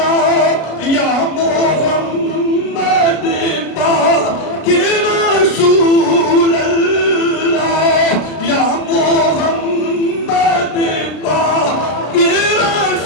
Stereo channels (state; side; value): late; right; 33 ms